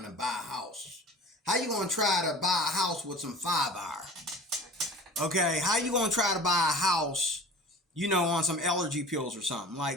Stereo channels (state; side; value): normal; both; correlation 0.41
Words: to buy a house. How you going to try to buy a house with some fiber? Okay, how you going to try to buy a house, you know, on some allergy pills or something?